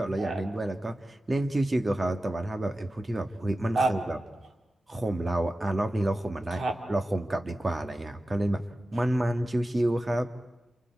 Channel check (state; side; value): normal; both; correlation 0.94